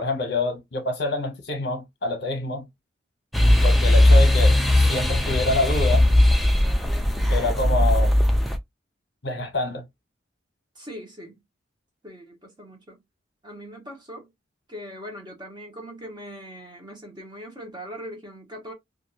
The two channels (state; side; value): normal; both; correlation 0.82